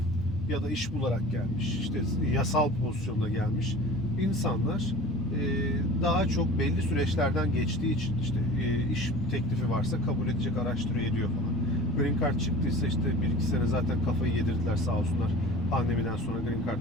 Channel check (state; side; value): normal; both; correlation 0.39